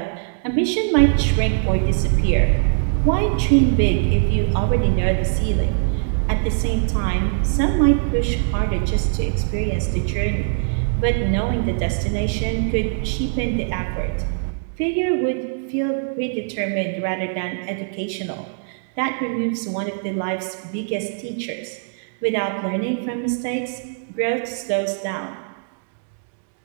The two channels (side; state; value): left; silent; digital silence